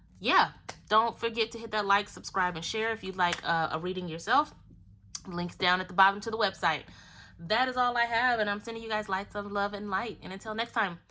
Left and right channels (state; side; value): identical; both; correlation 1.00